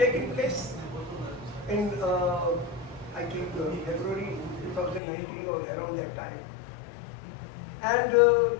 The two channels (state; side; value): drops out; right; at 5.0 s